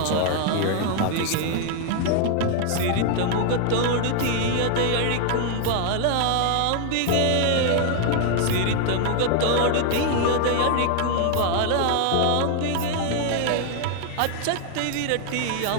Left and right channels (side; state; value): both; different; correlation 0.00